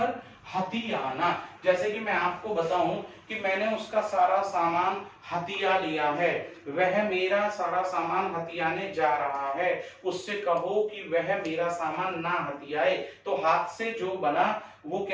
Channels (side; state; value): both; identical; correlation 1.00